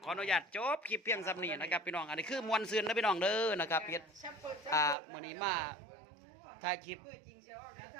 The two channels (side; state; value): left; drops out; at 5.0 s